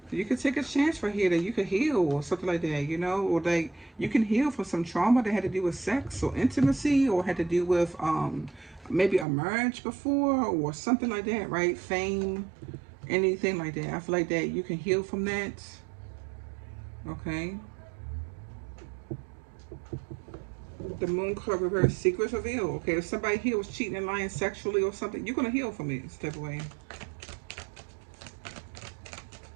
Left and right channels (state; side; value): drops out; left; at 9.2 s